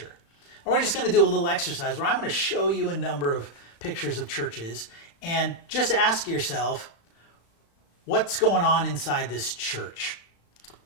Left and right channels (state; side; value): late; right; 35 ms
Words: And we're just going to do a little exercise where I'm going to show you a number of pictures of churches and just ask yourself, what's going on inside this church?